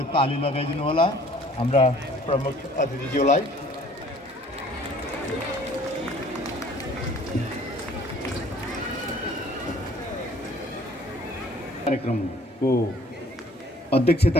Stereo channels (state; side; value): normal; both; correlation 0.55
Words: ताली लगाइदिनु होला हाम्रा प्रमुख अतिथिज्यूलाई। कार्यक्रमको